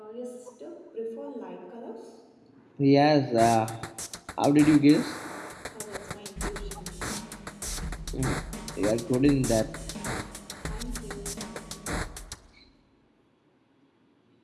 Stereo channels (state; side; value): identical; both; correlation 1.00